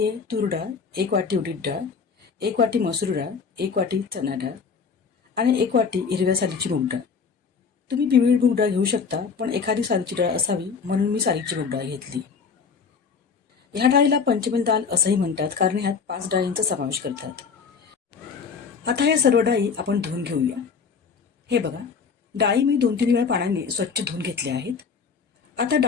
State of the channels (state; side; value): quieter; right; 5.7 dB